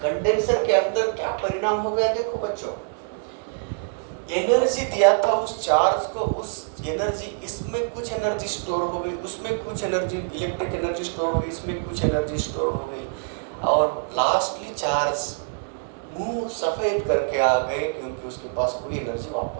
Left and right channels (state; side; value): silent; left; digital silence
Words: कंडेंसर के अंदर क्या परिणाम हो गया देखो बच्चों, एनर्जी दिया था उस चार्ज को, उस एनर्जी, इसमें कुछ एनर्जी स्टोर हो गई, उसमें कुछ एनर्जी इलेक्ट्रिक एनर्जी स्टोर हो गई, इसमें कुछ एनर्जी स्टोर हो गई, और लास्टली चार्ज मुंह सफेद करके आ गए क्योंकि उसके पास कोई एनर्जी